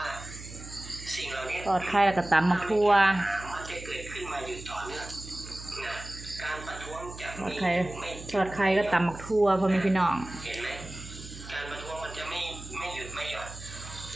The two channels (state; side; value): noise; right; hum, 13 dB below the sound